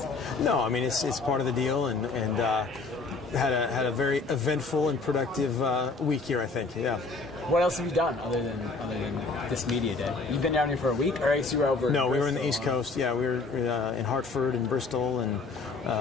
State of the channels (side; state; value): right; quieter; 3.9 dB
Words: No, I mean it's part of the deal, and had a very eventful and productive week here, I think. Yeah. What else have you done other than this media day? You've been down here for a week, or I guess you were over? No, in we were in Bristol, the East Coast. Yeah, we were in Hartford and Bristol, and